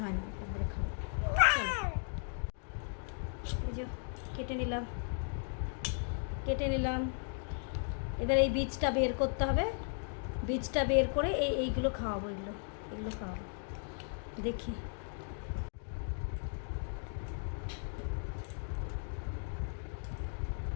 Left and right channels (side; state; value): right; silent; 54 dB below the other